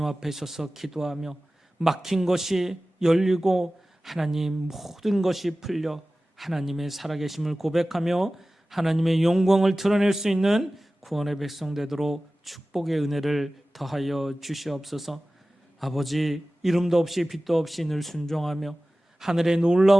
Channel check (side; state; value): both; normal; correlation 0.96